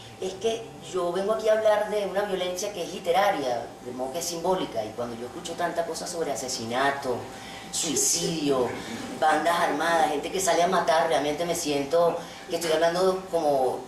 Es que yo vengo aquí a hablar de una violencia que es literaria, de modo que es simbólica, y cuando yo escucho tanta cosa sobre asesinato, suicidio, bandas armadas, gente que sale a matar, realmente me siento que estoy hablando como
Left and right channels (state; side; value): identical; both; correlation 1.00